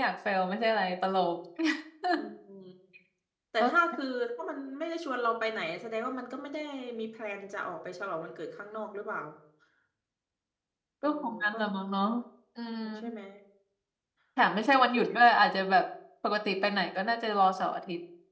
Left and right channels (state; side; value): identical; both; correlation 1.00